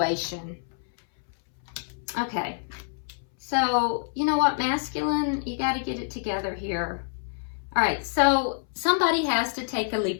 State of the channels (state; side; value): silent; right; 60 dB below the other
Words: Okay. So, you know what, masculine, you got to get it together here. All right, so somebody has to take a